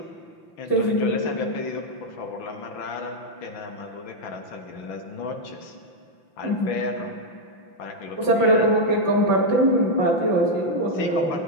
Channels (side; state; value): right; late; 5.9 ms